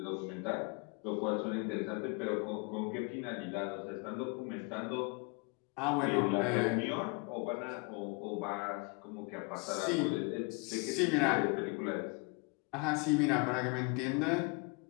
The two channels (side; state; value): right; quieter; 31.3 dB